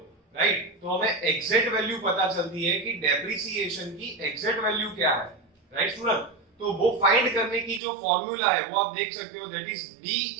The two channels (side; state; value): left; drops out; at 7.8 s